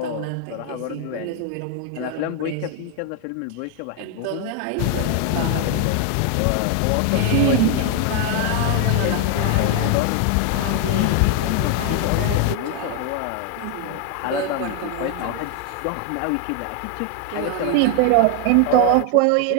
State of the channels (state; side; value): different; both; correlation 0.00